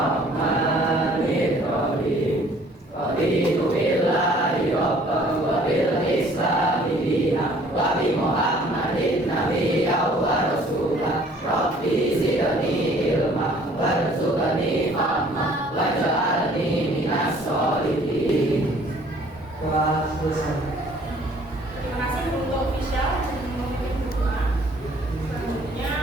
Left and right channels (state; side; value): normal; both; correlation 0.56